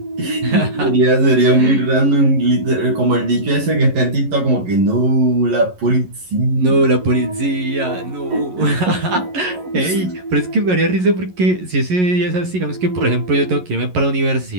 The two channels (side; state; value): left; late; 11 ms